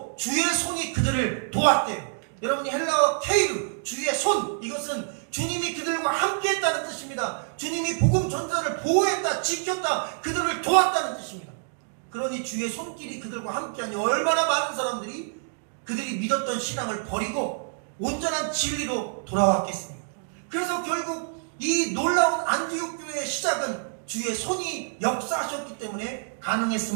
주의 손이 그들을 도왔대요. 여러분이 헬라어 케이르, 주의 손, 이것은 주님이 그들과 함께 했다는 뜻입니다. 주님이 복음 전자를 보호했다, 지켰다, 그들을 도왔다는 뜻입니다. 그러니 주의 손길이 그들과 함께하니 얼마나 많은 사람들이 그들이 믿었던 신앙을 버리고 온전한 진리로 돌아왔겠습니까? 그래서 결국 이 놀라운 안디옥 교회의 시작은 주의 손이 역사하셨기 때문에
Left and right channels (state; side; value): silent; left; digital silence